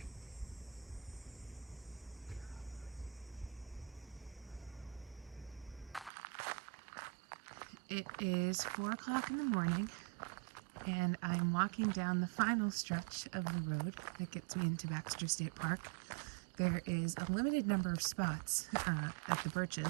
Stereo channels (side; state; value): left; drops out; at 6.1 s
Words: It is 4 o'clock in the morning, and I'm walking down the final stretch of the road that gets me into Baxter State Park. There is a limited number of spots at the